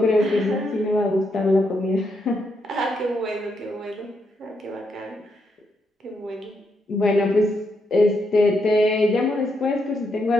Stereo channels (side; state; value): both; normal; correlation 0.79